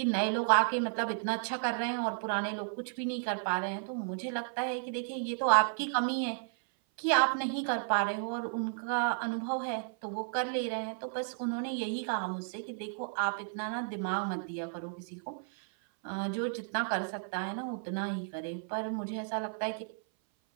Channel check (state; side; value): silent; left; 56 dB below the other